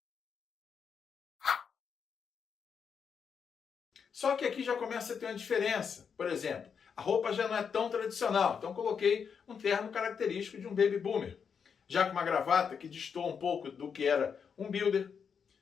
Só que aqui já começa a ter uma diferença. Por exemplo, a roupa já não é tão tradicional. Então coloquei um terno característico de um Baby Boomer. Já com uma gravata que destoa um pouco do que era um builder.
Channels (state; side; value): quieter; right; 6.6 dB